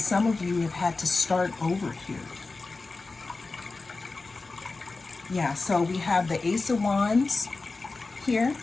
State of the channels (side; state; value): right; quieter; 3.7 dB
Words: of you have had to start over here. Yeah, so we have the Ace of Wands here,